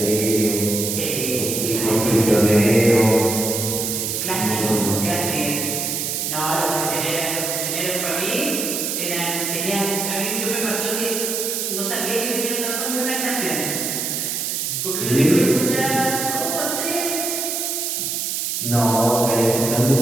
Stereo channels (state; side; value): noise; right; hiss, 1 dB below the sound